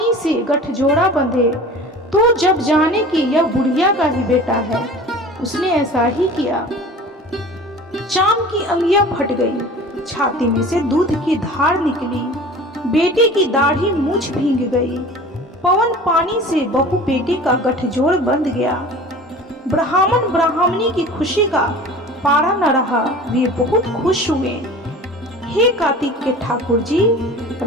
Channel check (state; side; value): normal; both; correlation 0.40